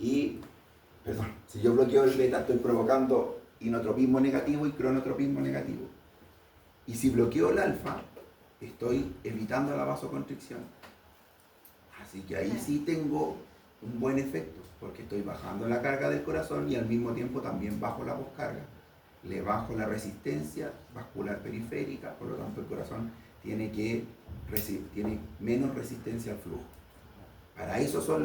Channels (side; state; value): both; identical; correlation 1.00